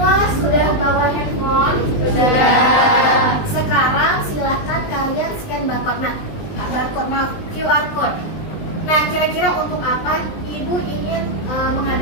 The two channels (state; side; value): late; right; 19 ms